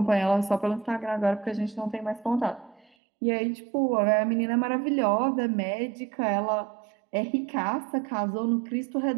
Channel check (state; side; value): drops out; left; at 2.9 s